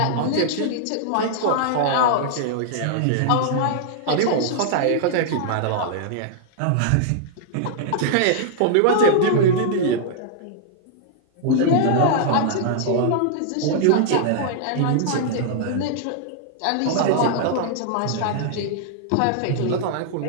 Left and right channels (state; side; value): different; both; correlation -0.01